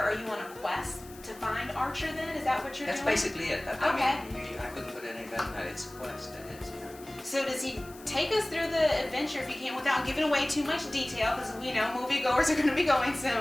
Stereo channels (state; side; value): noise; left; hiss, 20 dB below the sound